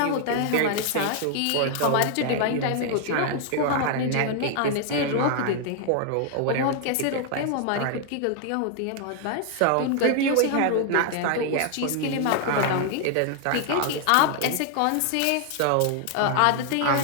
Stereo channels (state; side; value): different; both; correlation 0.00